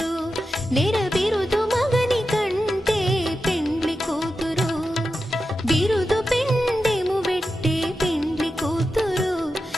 నెర బిరుదు మగని కంటే పెండ్లి కూతురు బిరుదు పిండెము పెట్టే పెండ్లి కూతురు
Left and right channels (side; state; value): both; normal; correlation 0.91